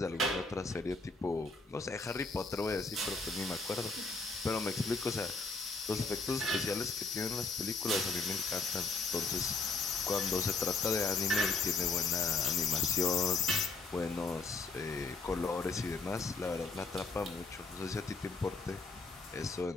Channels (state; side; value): quieter; right; 3.9 dB